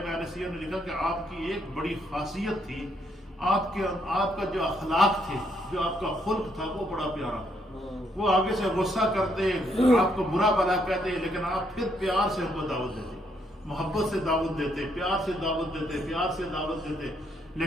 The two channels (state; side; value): normal; both; correlation 0.73